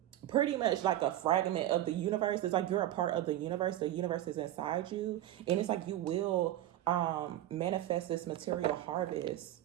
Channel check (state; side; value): quieter; left; 13.5 dB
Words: pretty much like a fragment of the universe. It's like you're a part of the universe is inside you, and it's like you will manifest this material harvest.